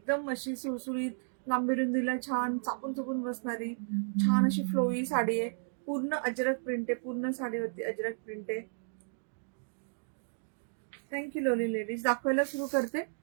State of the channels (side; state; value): left; silent; digital silence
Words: अशी सुळसुळीत लांबी रुंदीला छान चापून चुपून बसणारी छान अशी फ्लोई साडी आहे. पूर्ण अजरक प्रिंट आहे. पूर्ण साडीवरती अजरक प्रिंट आहे. थँक्यू लोली लेडीज. दाखवायला सुरू करते.